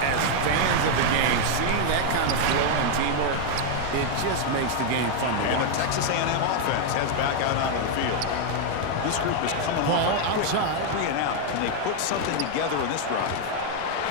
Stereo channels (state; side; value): different; both; correlation 0.00